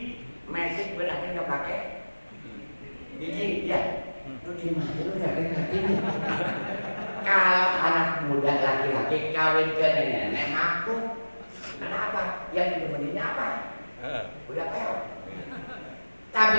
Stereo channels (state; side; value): inverted; both; correlation -1.00